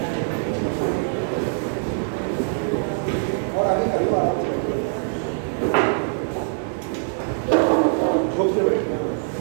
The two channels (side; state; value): left; silent; 63 dB below the other